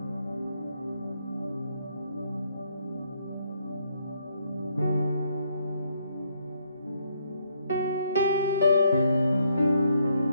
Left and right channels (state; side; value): inverted; both; correlation -0.73